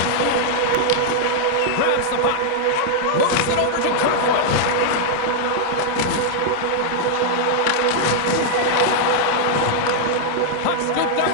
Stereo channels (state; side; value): different; both; correlation 0.00